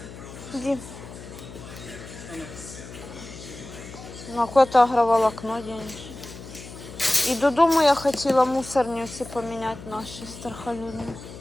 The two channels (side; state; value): left; noise; hum, 14 dB below the sound